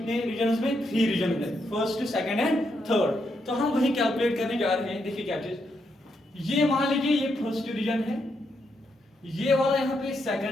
रीजन्स में, 3 रीजन में, फर्स्ट, सेकंड एंड थर्ड। तो हम वही कैलकुलेट करने जा रहे हैं। देखिए क्या चीज, ये मान लीजिए ये फर्स्ट रीजन है, ये वाला यहाँ पे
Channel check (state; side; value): normal; both; correlation 0.80